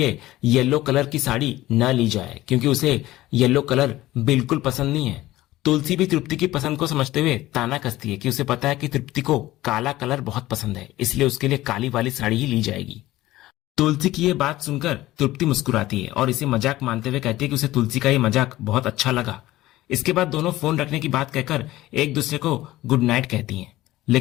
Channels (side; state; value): right; quieter; 16.5 dB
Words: येलो कलर की साड़ी न ली जाए, क्योंकि उसे येलो कलर बिल्कुल पसंद नहीं है। तुलसी भी तृप्ति की पसंद को समझते हुए ताना कसती है कि उसे पता है कि तृप्ति को काला कलर बहुत पसंद है, इसलिए उसके लिए काली वाली साड़ी ही ली जाएगी। तुलसी की ये बात सुनकर तृप्ति मुस्कुराती है और इसे मजाक मानते हुए कहती है कि उसे तुलसी का ये मजाक बहुत अच्छा लगा। इसके बाद दोनों फोन रखने की बात कहकर एक दूसरे को गुड नाइट कहती हैं।